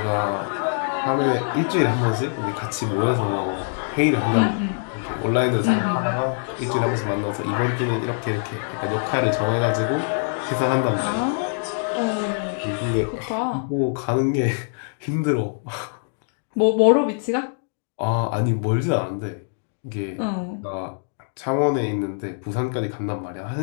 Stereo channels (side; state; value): right; silent; digital silence